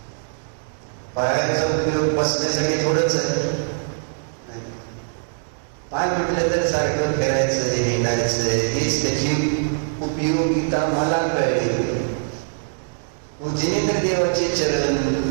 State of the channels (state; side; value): silent; left; digital silence